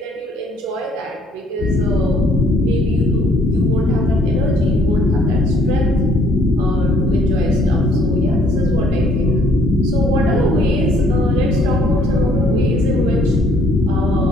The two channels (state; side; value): normal; both; correlation 0.63